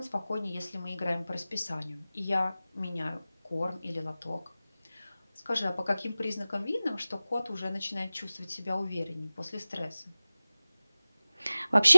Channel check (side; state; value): both; inverted; correlation -0.97